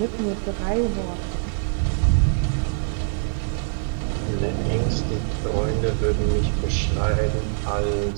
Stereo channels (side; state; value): left; silent; digital silence